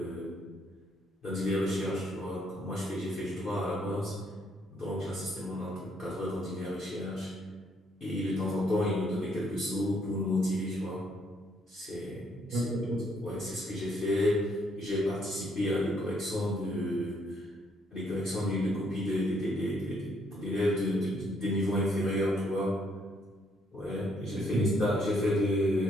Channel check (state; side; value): normal; both; correlation 0.70